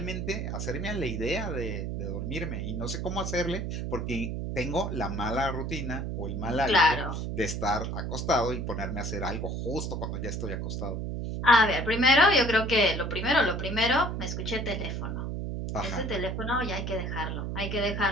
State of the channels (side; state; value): right; noise; hum, 3 dB below the sound